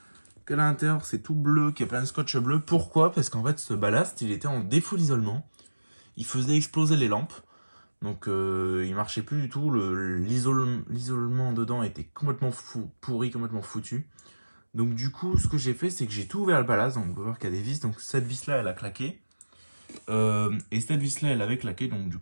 Qu'à l'intérieur, c'est tout bleu, qu'il y a plein de scotch bleu. Pourquoi? Parce qu'en fait, ce ballast, il était en défaut d'isolement. Il faisait exploser les lampes. Donc, il marchait plus du tout. L'isolement dedans était complètement pourri, complètement foutu. Donc, du coup, ce que j'ai fait, c'est que j'ai tout ouvert le ballast. Donc, on peut voir qu'il y a des vis. Donc, cette vis-là, elle a claqué. Et cette vis-là, elle avait claqué. Donc, du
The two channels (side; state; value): both; inverted; correlation -1.00